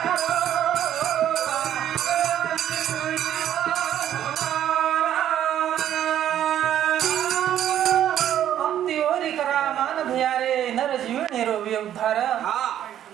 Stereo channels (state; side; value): quieter; left; 11.0 dB